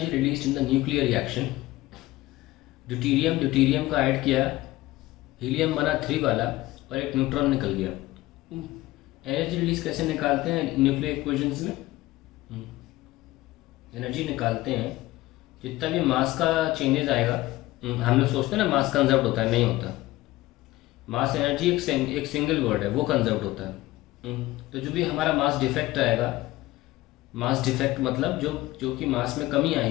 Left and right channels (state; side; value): quieter; right; 17.8 dB